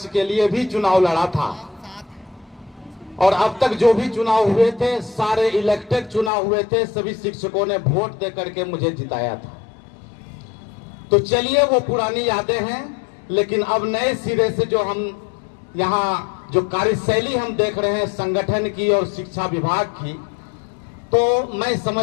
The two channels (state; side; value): drops out; right; at 6.3 s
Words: के लिए भी चुनाव लड़ा था। और अब तक जो भी चुनाव हुए थे सारे इलेक्टेड चुनाव हुए थे, सभी शिक्षकों ने वोट दे करके मुझे जिताया था। तो चलिए वो पुरानी यादें हैं, लेकिन अब नए सिरे से जो हम यहाँ जो कार्यशैली हम देख रहे हैं संगठन की और शिक्षा विभाग की, तो मैं